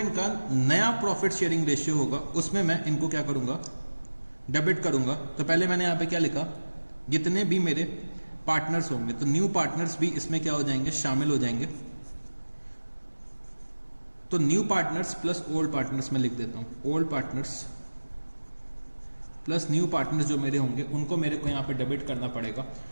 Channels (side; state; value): both; inverted; correlation -1.00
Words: नया प्रॉफिट शेयरिंग रेशियो होगा उसमें मैं इनको क्या करूंगा, डेबिट करूंगा। तो पहले मैंने यहां पे क्या लिखा, जितने भी मेरे पार्टनर्स होंगे, तो न्यू पार्टनर्स भी इसमें क्या हो जाएंगे, शामिल हो जाएंगे। तो new partners plus old partners में लिख देता हूं, old partners plus new partners जो मेरे होंगे उनको मेरे को यहां पे डेबिट करना पड़ेगा।